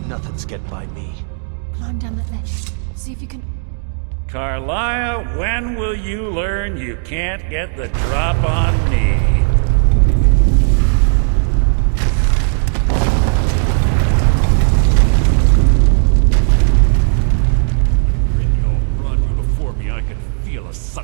Nothing's getting by me. Climb down that ledge. See if you can... Carlia, when will you learn you can't get the drop on me? When Brynjolf brought you before me, I could feel a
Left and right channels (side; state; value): left; silent; 65 dB below the other